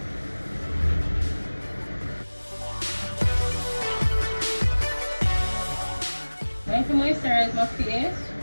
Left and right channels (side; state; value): both; inverted; correlation -1.00